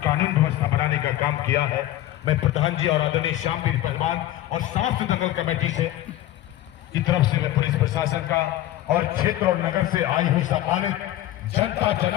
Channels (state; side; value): quieter; right; 14.0 dB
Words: व्यवस्था बनाने का काम किया है। मैं प्रधान जी और आदरणीय श्यामवीर पहलवान और समस्त दंगल कमेटी से की तरफ से मैं पुलिस प्रशासन का और क्षेत्र और नगर से आई हुई सम्मानित जनता